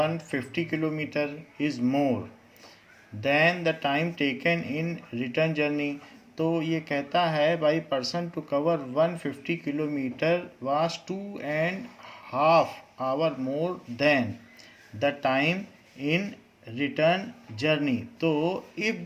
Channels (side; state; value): both; identical; correlation 1.00